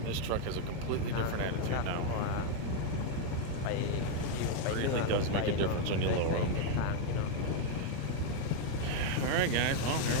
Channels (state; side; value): different; both; correlation 0.01